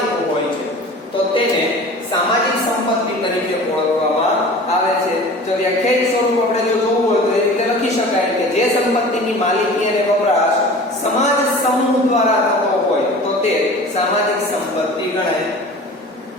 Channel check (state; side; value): normal; both; correlation 0.40